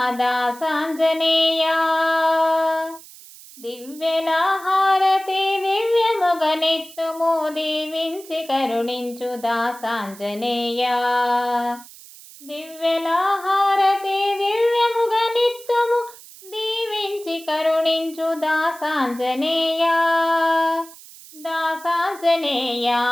దాసాంజనేయ దివ్యల హారతి దివ్యముగనెత్తుము దీవించి కరుణించు దాసాంజనేయ దివ్యల హారతి దివ్యముగనెత్తుము దీవించి కరుణించు దాసాంజనేయ దాసాంజనేయ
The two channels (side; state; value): right; noise; hiss, 19 dB below the sound